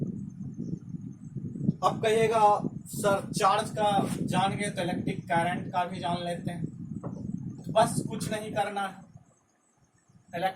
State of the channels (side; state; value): both; identical; correlation 1.00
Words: अब कहिएगा सर चार्ज का जान गए तो इलेक्ट्रिक करंट का भी जान लेते हैं। बस कुछ नहीं करना है,